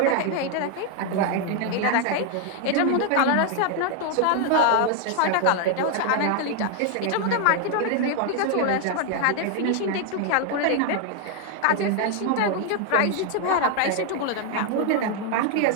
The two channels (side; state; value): both; different; correlation 0.00